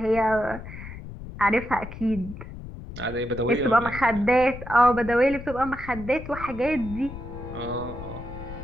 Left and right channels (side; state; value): left; noise; rumble, 12 dB below the sound